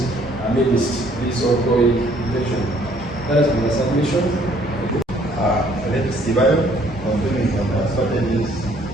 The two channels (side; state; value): both; normal; correlation 0.62